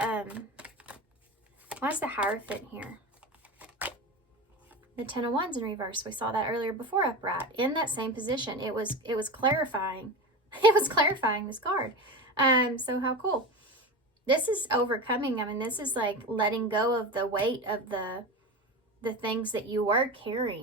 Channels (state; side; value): normal; both; correlation 0.25